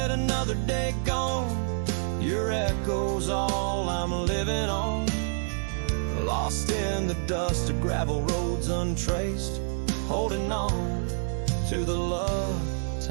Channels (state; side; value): silent; left; digital silence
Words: another day gone, your echo's all I'm living on. Lost in the dust of gravel roads untraced, holding on to the love